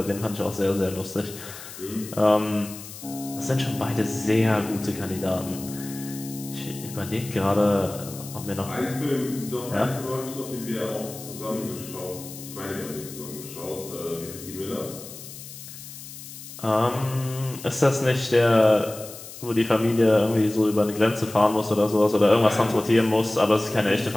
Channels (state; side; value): noise; left; hiss, 14 dB below the sound